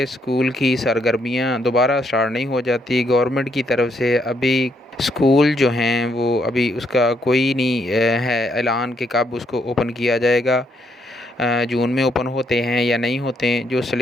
اسکول کی سرگرمیاں دوبارہ سٹارٹ نہیں ہو جاتی۔ گورنمنٹ کی طرف سے ابھی اسکول جو ہیں وہ ابھی اس کا کوئی نہیں ہے اعلان کہ کب اس کو اوپن کیا جائے گا، جون میں اوپن ہوتے ہیں یا نہیں ہوتے ہیں۔ جو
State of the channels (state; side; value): normal; both; correlation 0.74